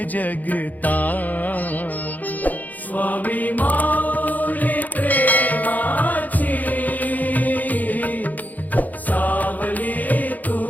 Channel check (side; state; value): right; late; 0.081 ms